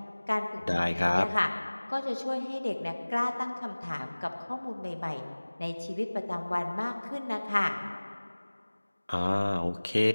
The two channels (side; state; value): both; inverted; correlation -1.00